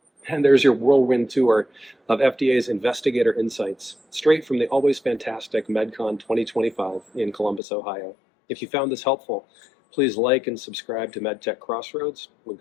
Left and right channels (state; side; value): drops out; right; at 7.6 s